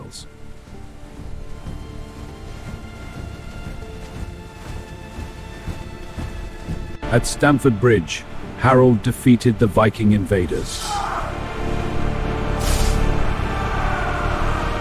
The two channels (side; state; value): both; identical; correlation 1.00